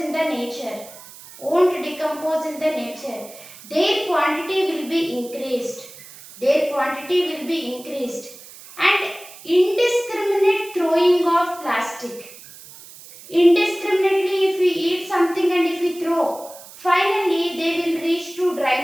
the nature, their quantity will be increased. And indiscriminate throwing of plastic. Indiscriminately, if we eat something and if we throw, finally they will reach to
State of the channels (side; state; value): right; noise; hiss, 18 dB below the sound